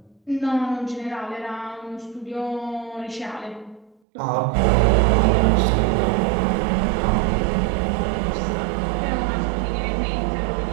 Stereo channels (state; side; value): drops out; left; at 4.0 s